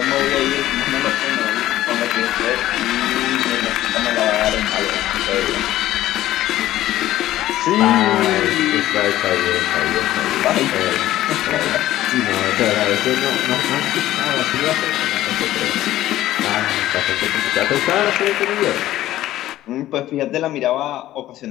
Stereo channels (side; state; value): right; quieter; 14.3 dB